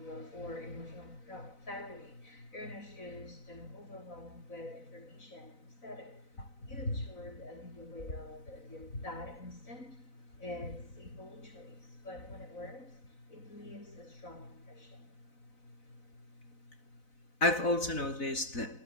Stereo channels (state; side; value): late; right; 4.0 ms